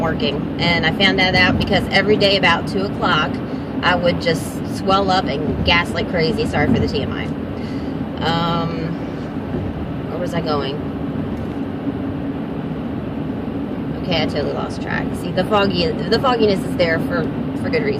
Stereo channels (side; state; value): both; identical; correlation 1.00